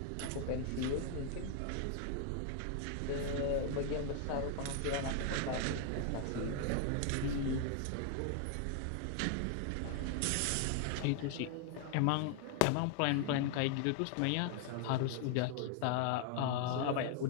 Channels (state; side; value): different; both; correlation 0.00